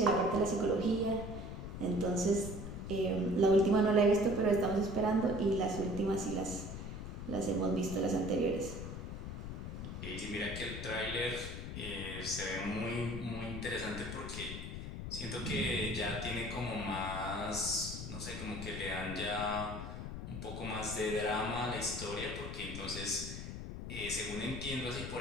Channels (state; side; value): noise; left; rumble, 7 dB below the sound